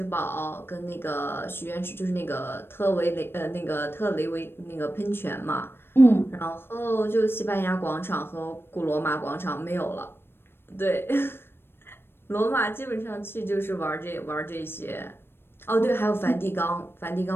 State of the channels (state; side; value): late; right; 0.11 ms